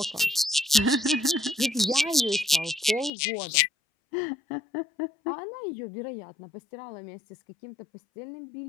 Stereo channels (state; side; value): drops out; right; at 3.1 s